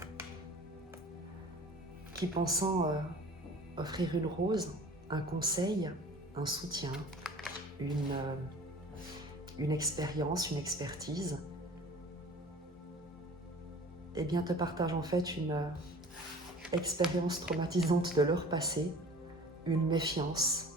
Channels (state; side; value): normal; both; correlation 0.44